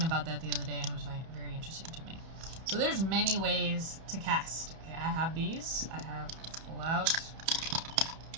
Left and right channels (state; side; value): late; left; 31 ms